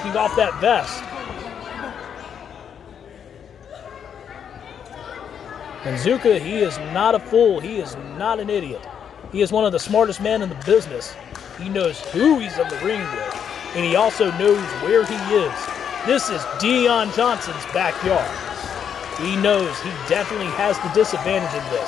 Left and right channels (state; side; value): quieter; right; 8.1 dB